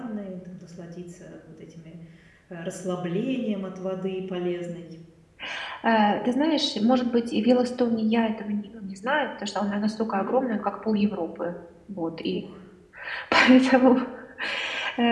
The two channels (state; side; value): identical; both; correlation 1.00